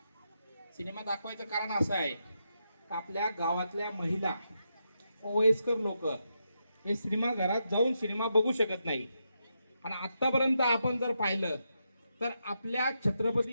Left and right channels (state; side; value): inverted; both; correlation -0.84